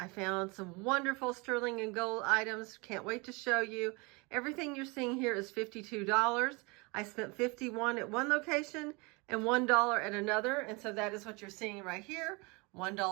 found some wonderful sterling and gold items. Can't wait to show you. Everything you're seeing here is $52. I spent $51 at one location and $1 at another. And so that is what you're seeing right here.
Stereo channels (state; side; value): quieter; left; 28.0 dB